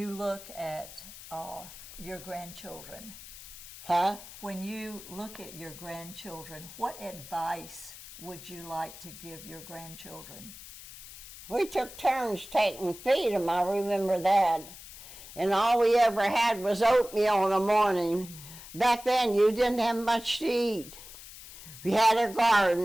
look at your grandchildren, Huh? when you look at your grandchildren, what advice would you like to give your grandchildren? We took turns taking feed them, I remember that. And all we ever had was oatmeal in the morning. Back then, you didn't have much to eat. We had a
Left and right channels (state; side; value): noise; left; hiss, 15 dB below the sound